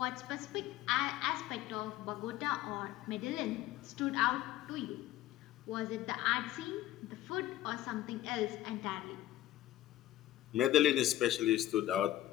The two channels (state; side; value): quieter; right; 14.0 dB